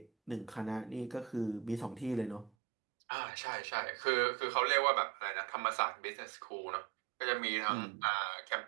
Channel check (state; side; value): drops out; left; at 2.5 s